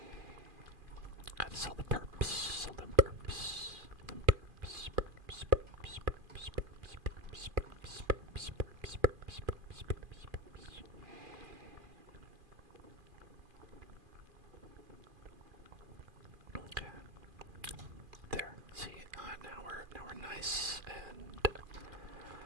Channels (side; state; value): left; late; 2.4 ms